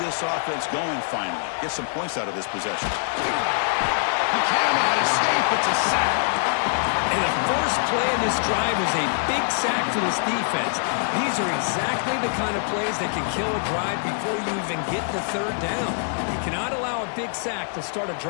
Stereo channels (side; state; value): right; silent; digital silence